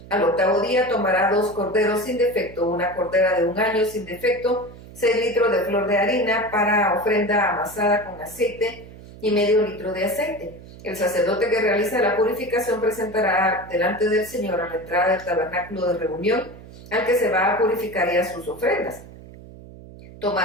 Al 8º día tomará 2 corderos sin defecto, una cordera de 1 año sin defecto, 6 litros de flor de harina para ofrenda amasada con aceite y medio litro de aceite. El sacerdote que realiza la purificación presentará delante del Señor a la entrada del tabernáculo de reunión al que se va a purificar y a sus ofrendas.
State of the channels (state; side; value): noise; right; hum, 18 dB below the sound